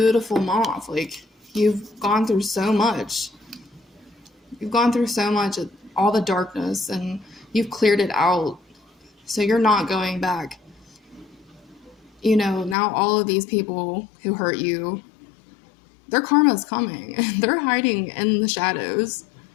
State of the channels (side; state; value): right; drops out; at 12.8 s